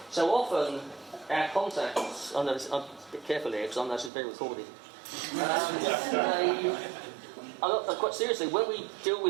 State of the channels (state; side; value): drops out; left; at 4.1 s